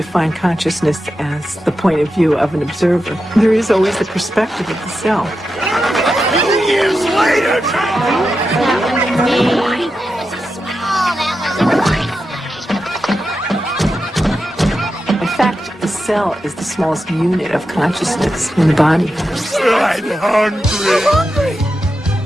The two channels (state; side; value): normal; both; correlation 0.89